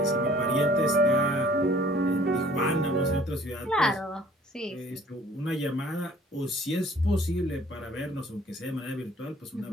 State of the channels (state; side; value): normal; both; correlation 0.54